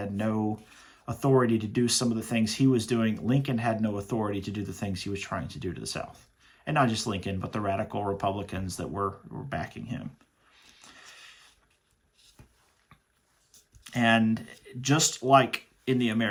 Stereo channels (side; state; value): both; identical; correlation 1.00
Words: no authority to do some of the things he was doing, Lincoln had no authority to do the things he was trying to do to the South. And not just Lincoln, but the radical Republicans that were backing him. And just like in the